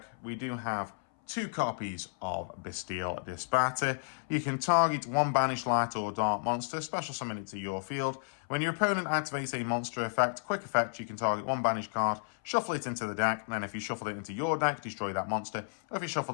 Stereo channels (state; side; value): silent; right; 56 dB below the other